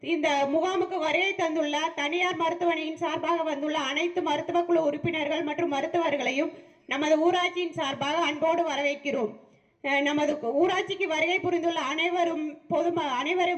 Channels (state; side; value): identical; both; correlation 1.00